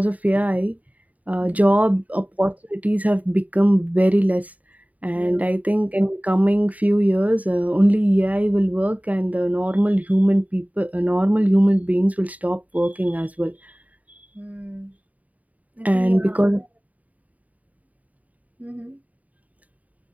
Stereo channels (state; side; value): late; left; 0.072 ms